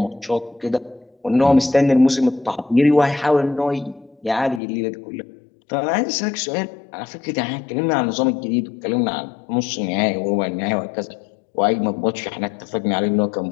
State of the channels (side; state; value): right; drops out; at 4.6 s